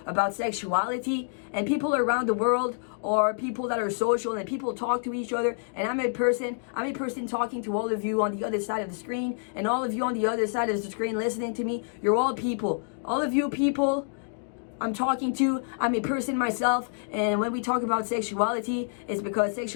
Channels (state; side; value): silent; right; digital silence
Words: about sexuality, and people around the world are people that are social, and people talk to each other, and I'm a person talking to all of you on the other side of the screen, and all of you on the other side of the screen listening to me. You're all people. All of you people I'm talking to, I'm a person myself, and when we talk about sexuality, it's because